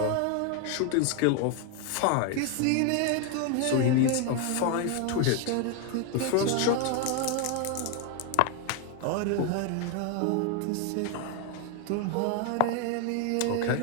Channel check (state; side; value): different; both; correlation 0.01